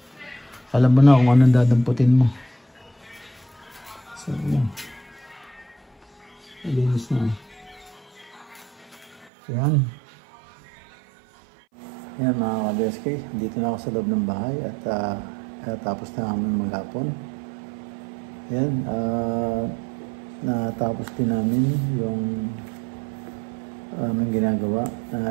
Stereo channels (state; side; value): drops out; left; at 9.3 s